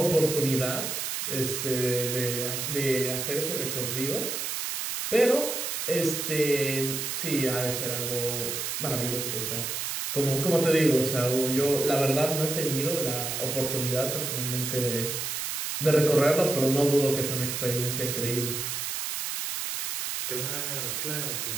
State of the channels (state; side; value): noise; right; hiss, 3 dB below the sound